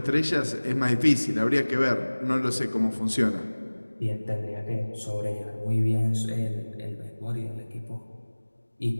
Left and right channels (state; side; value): inverted; both; correlation -1.00